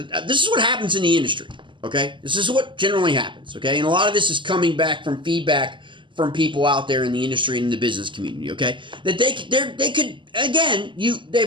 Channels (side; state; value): left; late; 0.24 ms